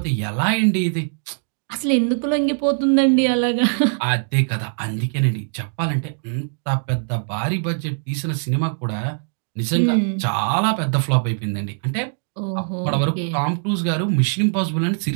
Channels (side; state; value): left; silent; digital silence